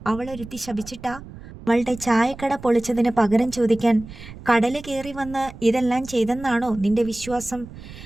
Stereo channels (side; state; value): right; noise; rumble, 16 dB below the sound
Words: അവളൊരുത്തി ശപിച്ചിട്ടാ? അവളുടെ ചായക്കട പൊളിച്ചതിന് പകരം ചോദിക്കാൻ കടല് കയറി വന്ന് ഇതെല്ലാം ചെയ്തെന്നാണോ നിന്റെ വിശ്വാസം?